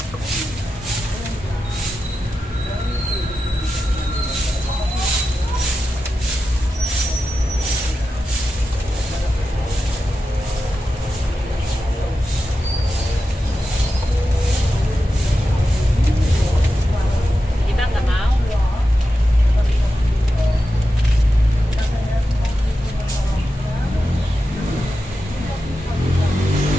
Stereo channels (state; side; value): normal; both; correlation 0.91